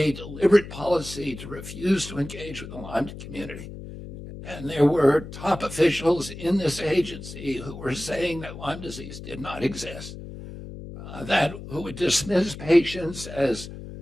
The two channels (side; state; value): left; noise; hum, 12 dB below the sound